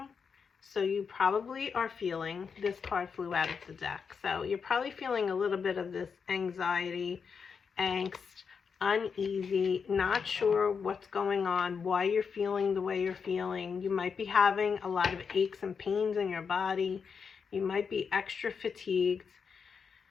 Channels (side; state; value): right; quieter; 6.0 dB